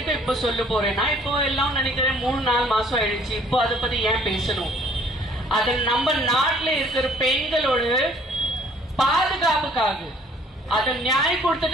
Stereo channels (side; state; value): both; normal; correlation 0.58